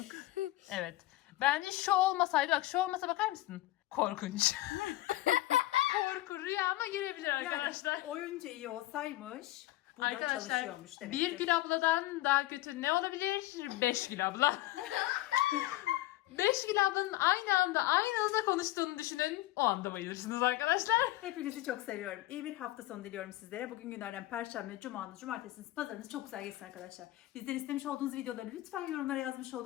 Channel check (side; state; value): right; quieter; 16.8 dB